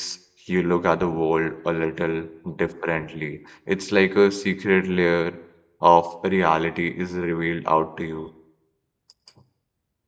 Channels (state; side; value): identical; both; correlation 1.00